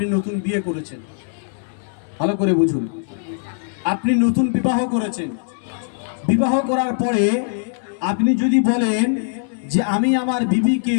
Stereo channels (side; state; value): right; silent; digital silence